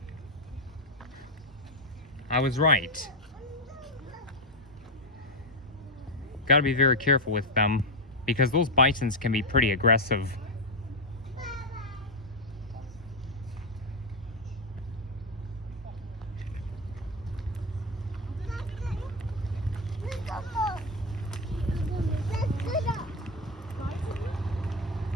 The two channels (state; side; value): normal; both; correlation 0.07